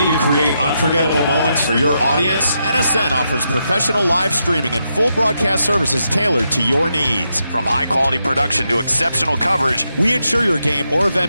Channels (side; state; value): both; inverted; correlation -0.83